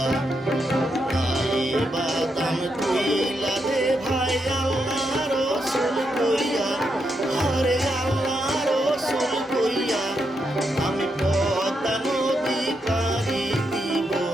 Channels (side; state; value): both; normal; correlation 0.82